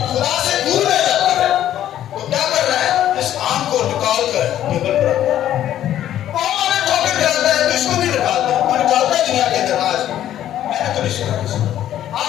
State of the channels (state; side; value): quieter; right; 11.8 dB